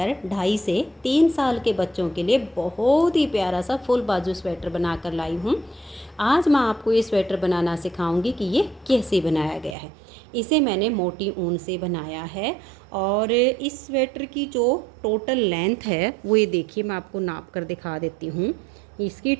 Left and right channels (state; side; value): drops out; left; at 9.8 s